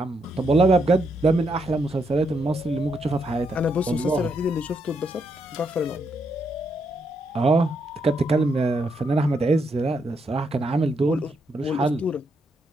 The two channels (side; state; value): both; normal; correlation 0.78